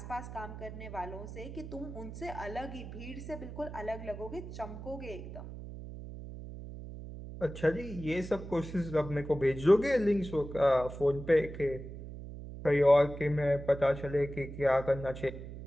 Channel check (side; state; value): right; noise; hum, 11 dB below the sound